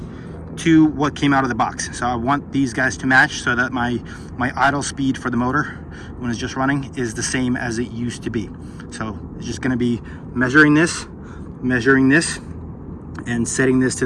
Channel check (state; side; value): identical; both; correlation 1.00